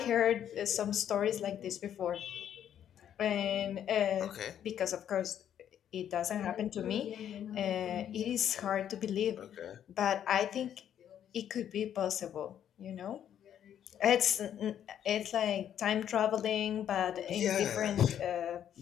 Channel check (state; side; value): quieter; right; 9.9 dB